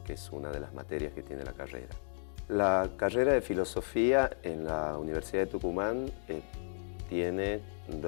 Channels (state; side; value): silent; right; digital silence